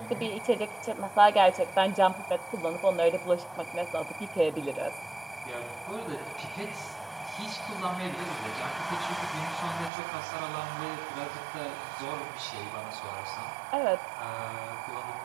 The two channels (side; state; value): left; drops out; at 9.9 s